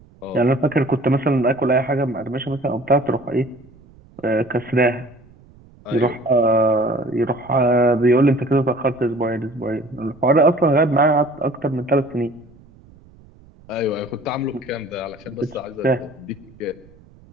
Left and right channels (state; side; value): noise; right; rumble, 26 dB below the sound